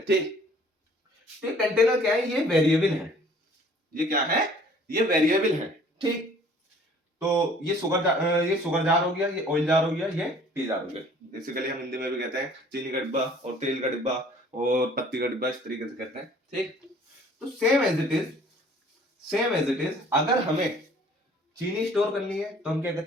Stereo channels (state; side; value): normal; both; correlation 0.54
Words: ठीक। तो कंटेनर क्या है, ये वेरिएबल है, ये क्या है, ये वेरिएबल है, ठीक। तो ये शुगर जार हो गया, ये ऑयल जार हो गया, ये टी जार हो गया। बेसिकली हम हिंदी में भी कहते हैं चीनी का डिब्बा और तेल का डिब्बा और पत्ती का डिब्बा, इस तरीके से कहते हैं, ठीक। तो same as it is, same as it is, अगर हमें चीनी स्टोर करनी है तो हम क्या